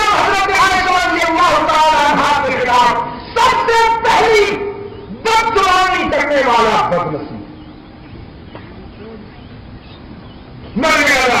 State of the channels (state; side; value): identical; both; correlation 1.00